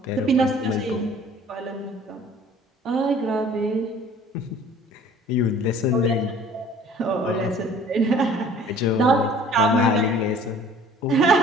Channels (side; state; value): both; normal; correlation 0.50